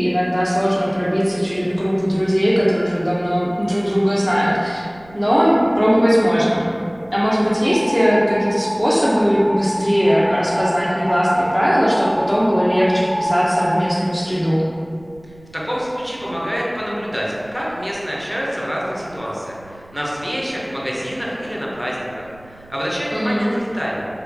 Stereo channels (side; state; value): right; noise; rumble, 25 dB below the sound